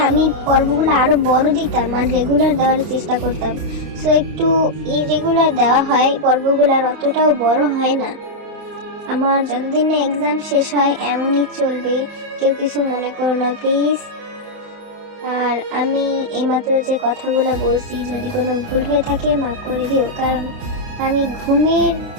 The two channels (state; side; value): late; left; 29 ms